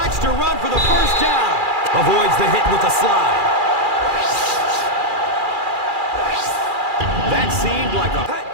to run for the first down. Avoids the hit with a slide. That seemed like a...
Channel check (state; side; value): late; left; 2.4 ms